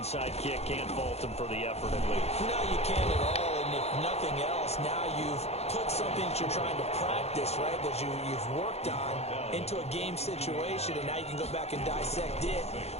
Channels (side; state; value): right; late; 0.31 ms